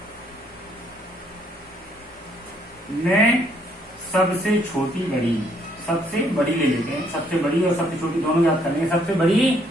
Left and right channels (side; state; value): both; normal; correlation 0.68